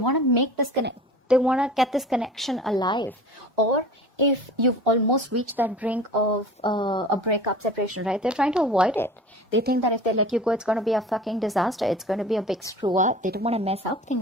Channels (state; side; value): normal; both; correlation 0.40